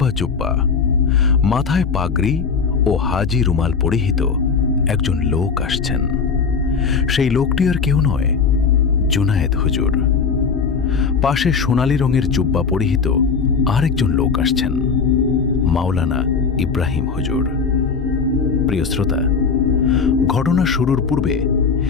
জুব্বা, মাথায় পাগড়ি ও হাজি রুমাল পরিহিত একজন লোক আসছেন। সেই লোকটি আর কেউ নয়, জুনায়েদ হুজুর। পাশে সোনালী রঙের জুব্বা পরিহিত আরেকজন লোক আসছেন, মাওলানা ইব্রাহিম হুজুর। প্রিয় শ্রোতা, ঘটনা শুরুর পূর্বে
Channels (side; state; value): right; quieter; 5.5 dB